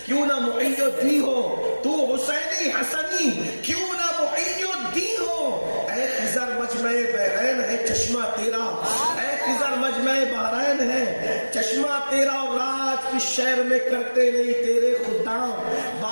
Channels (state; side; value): inverted; both; correlation -1.00